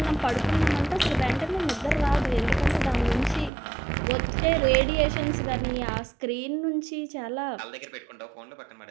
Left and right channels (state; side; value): drops out; left; at 3.5 s